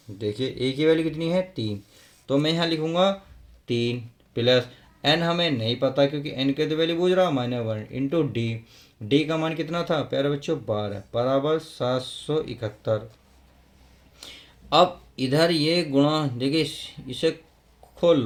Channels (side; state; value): both; identical; correlation 1.00